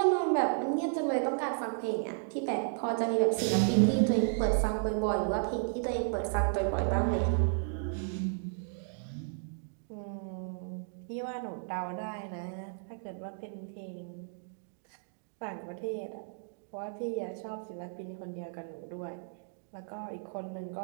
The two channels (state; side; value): silent; left; digital silence